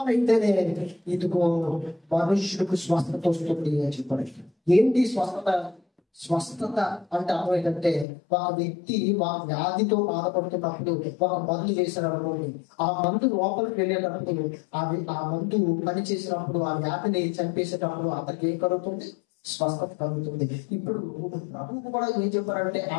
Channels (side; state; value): right; drops out; at 8.1 s